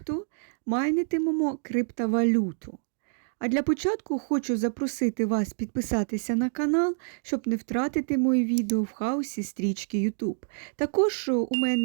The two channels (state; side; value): silent; left; digital silence